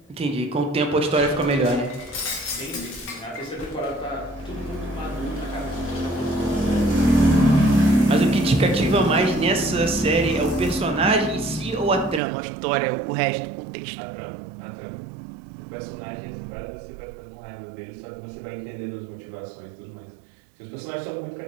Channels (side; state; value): left; drops out; at 12.2 s